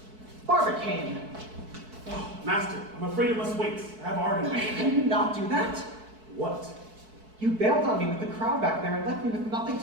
Barbicane! Oh, Master, I'm afraid it must wait. I have art in me. Can you not do that? What? You bailed on me with the crowd back there and left me with nothing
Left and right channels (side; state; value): left; late; 4.6 ms